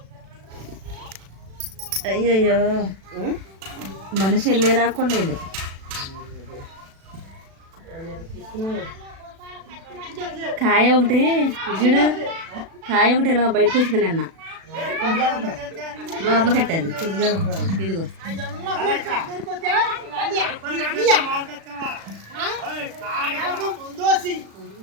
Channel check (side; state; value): left; late; 36 ms